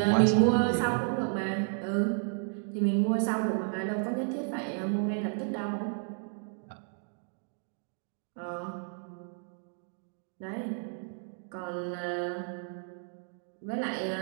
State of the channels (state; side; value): silent; left; 56 dB below the other